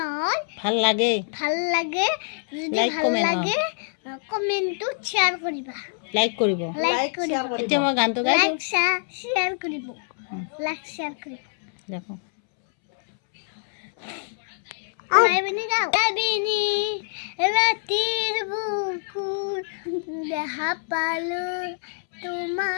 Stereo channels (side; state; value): right; silent; 62 dB below the other